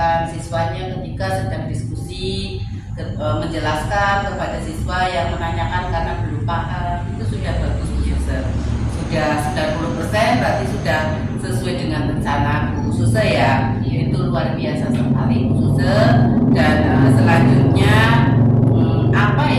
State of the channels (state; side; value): identical; both; correlation 1.00